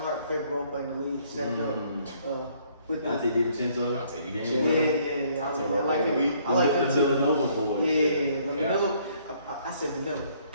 favorite role player in the league, stepped up. With Dante DiVincenzo. Yeah. I like him. I like him the too. Villanova boys. Yeah. Vanilla. I said vanilla.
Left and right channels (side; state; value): both; inverted; correlation -0.64